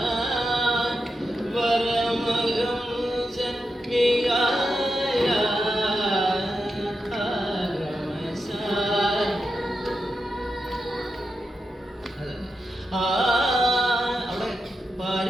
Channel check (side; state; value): both; normal; correlation 0.88